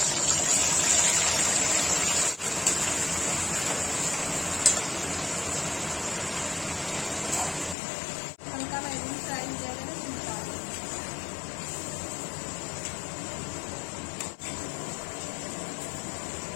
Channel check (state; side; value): drops out; right; at 7.8 s